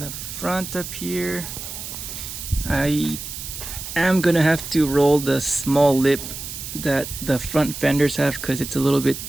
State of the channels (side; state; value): right; noise; hiss, 9 dB below the sound